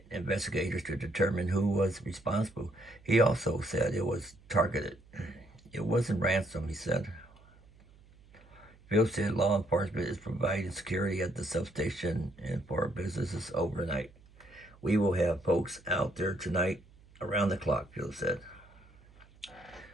investigators to determine who was responsible. He also said it was targeted. It wasn't ransom, he said. Phil said law enforcement is providing security at the substation and for businesses overnight. "We will have folks out there tonight around the clock," Phil said.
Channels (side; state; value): right; noise; hum, 26 dB below the sound